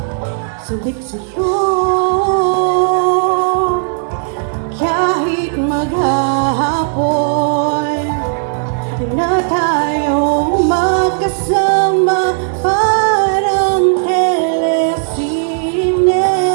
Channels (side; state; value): left; silent; digital silence